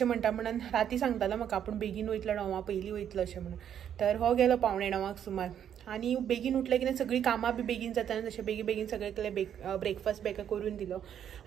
म्हणटा म्हणून. राती सांगतालो म्हाका आपूण बेगीन वयतलो 9 पयलीं वयतलो अशें म्हणून. तर हो गेलो पावणे 9 सुमार आनी बेगीन उठलें कितें सगळीं कामां बी बेगीन जाता आनी तशें बेगीन बेगीन सगळें केलें. ब्रेकफास्ट बेगा करून दिलो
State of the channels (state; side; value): quieter; left; 9.4 dB